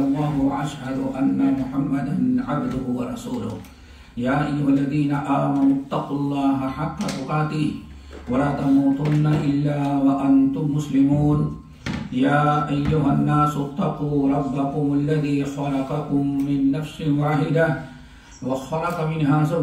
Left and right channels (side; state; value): both; identical; correlation 1.00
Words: व अशहदु अन्ना मुहम्मदन अब्दुहु व रसूलुहु या अय्युहल्लज़ीना आमनुत्तक़ुल्लाहा हक़्क़ तुक़ातिह वला तमूतुन्ना इल्ला व अंतुम मुस्लिमून या अय्युहन्नासुत्तक़ू रब्बकुमुल्लज़ी ख़लक़कुम मिन नफ्सिन वाहिदा व ख़लक़ मिन्हा